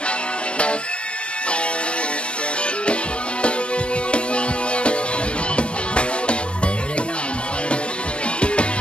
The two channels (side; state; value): right; late; 0.057 ms